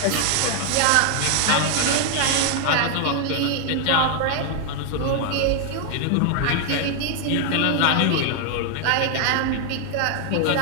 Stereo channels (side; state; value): both; different; correlation 0.00